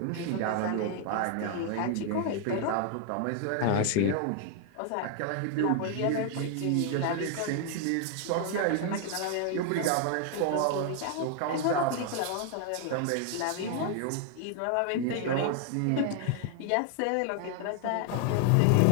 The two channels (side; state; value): both; different; correlation 0.00